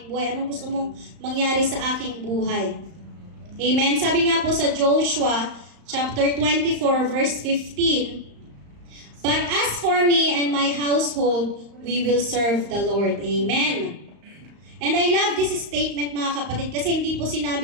buhay? Anong gusto mong mangyari sa aking buhay? Amen? Sabi nga po sa Joshua, chapter 24, verse 15, but as for me and my household, we will serve the Lord. Amen? And I love this statement, mga kapatid, kasi hindi po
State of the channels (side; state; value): left; late; 35 ms